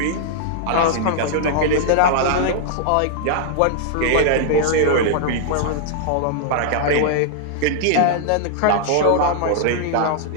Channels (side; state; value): both; different; correlation -0.01